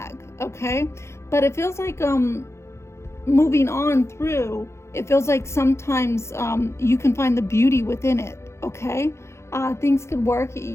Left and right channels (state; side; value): late; right; 0.13 ms